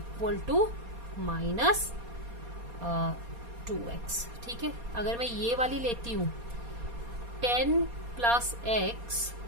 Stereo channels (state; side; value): late; left; 4.2 ms